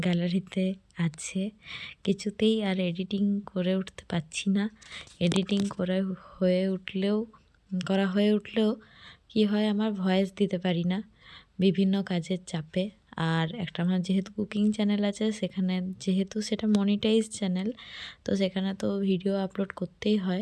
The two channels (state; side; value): identical; both; correlation 1.00